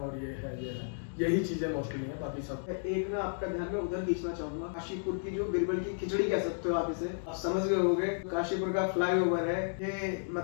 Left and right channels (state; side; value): silent; right; digital silence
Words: ये है, यही चीजें मोस्टली है, बाकी सब। एक ना आपका ध्यान में उधर खींचना चाहूंगा, काशीपुर की जो बिरबल की खिचड़ी कह सकते हो आप इसे, आप समझ गए होंगे। काशीपुर का फ्लाईओवर है, ये